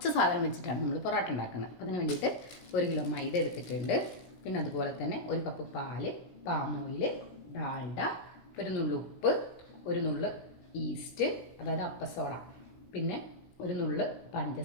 സാധനം വെച്ചിട്ടാണ് നമ്മൾ പൊറോട്ട ഉണ്ടാക്കുന്നത്. അപ്പം അതിന് വേണ്ടിയിട്ട് 1 കിലോ മൈദ എടുത്തിട്ടുണ്ട്. പിന്നെ അതുപോലെ തന്നെ 1 കപ്പ് പാല്, പാം ഓയിൽ, ഡാൽഡ, ഒരു നുള്ളു ഉപ്പ്, ഒരു നുള്ളു ഈസ്റ്റ് അതായത് അപ്പസോഡ, പിന്നെ ഒരു നുള്ളു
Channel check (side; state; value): right; late; 17 ms